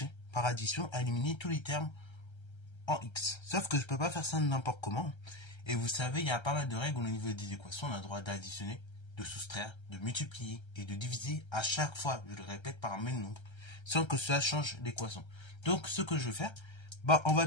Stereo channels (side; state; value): right; late; 1.3 ms